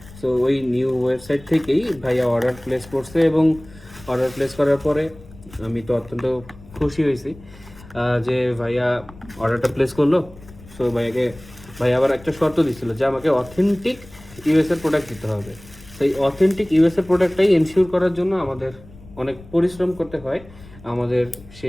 সো ওই নিউ ওয়েবসাইট থেকেই ভাইয়া অর্ডার প্লেস করছে এবং অর্ডার প্লেস করার পরে আমি তো অত্যন্ত খুশি হয়েছি যে ভাইয়া অর্ডারটা প্লেস করলো। সো ভাইয়া আবার একটা শর্ত দিচ্ছিল যে আমাকে অথেন্টিক ইউএসএর প্রোডাক্ট দিতে হবে। সেই অথেন্টিক ইউএসএর প্রোডাক্টটাই এনশিওর করার জন্য আমাদের অনেক পরিশ্রম করতে হয়, আমাদের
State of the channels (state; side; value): noise; left; rumble, 20 dB below the sound